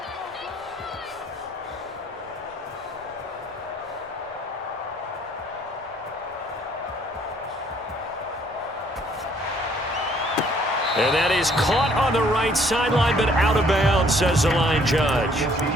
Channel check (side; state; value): both; normal; correlation 0.62